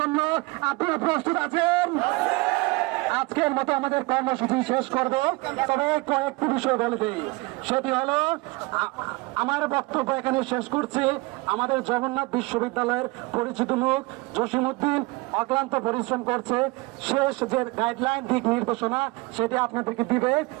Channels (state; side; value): quieter; left; 24.2 dB